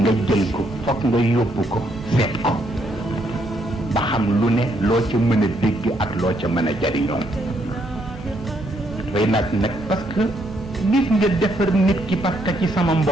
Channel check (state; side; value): normal; both; correlation 0.73